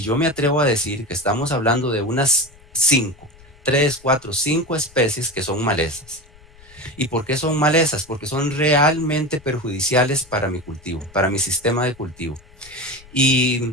yo me atrevo a decir que estamos hablando de unas 3, 4, 5 especies que son malezas. ¿Y por qué son malezas? Porque son realmente perjudiciales para mi cultivo, para mi sistema de cultivo.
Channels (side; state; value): left; noise; rumble, 25 dB below the sound